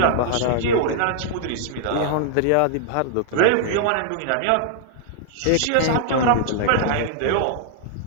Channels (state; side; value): different; both; correlation -0.01